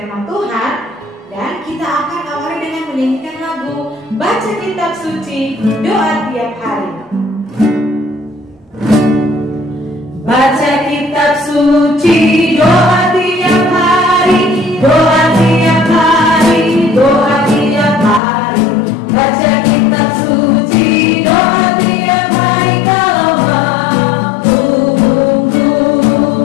Tuhan. Dan kita akan awali dengan menyanyikan lagu Baca Kitab Suci, Doa Tiap Hari. Baca kitab suci, doa tiap hari, doa tiap hari, doa tiap hari. Baca kitab suci, doa tiap hari kalau mampu,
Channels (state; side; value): drops out; right; at 18.2 s